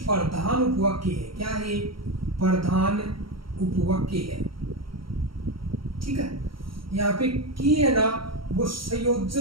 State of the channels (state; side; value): late; left; 0.74 ms